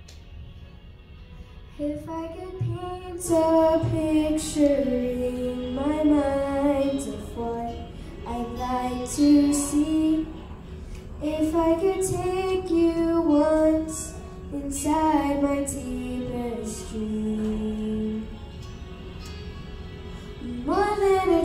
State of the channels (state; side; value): identical; both; correlation 1.00